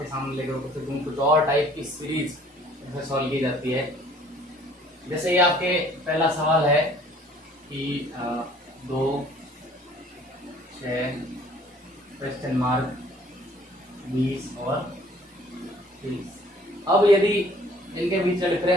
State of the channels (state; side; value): normal; both; correlation 0.55